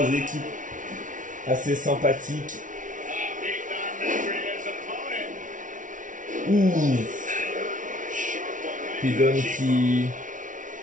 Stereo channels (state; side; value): late; left; 0.38 ms